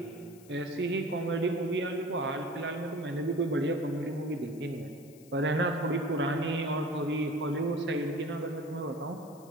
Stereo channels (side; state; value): left; noise; hiss, 24 dB below the sound